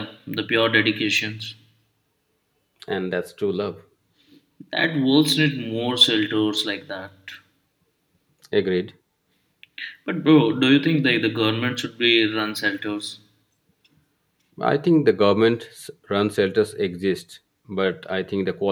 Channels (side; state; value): both; identical; correlation 1.00